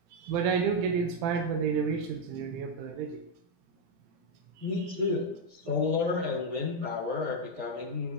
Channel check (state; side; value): late; left; 18 ms